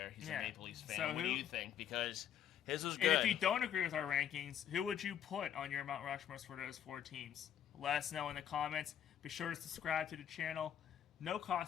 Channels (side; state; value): right; quieter; 9.6 dB